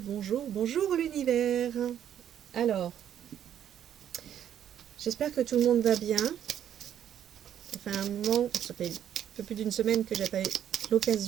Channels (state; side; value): quieter; left; 10.0 dB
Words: bonjour, bonjour l'univers. Alors, j'espère que tout le monde va bien. Ça fait un moment, ça fait un peu plus d'une semaine que j'ai pas eu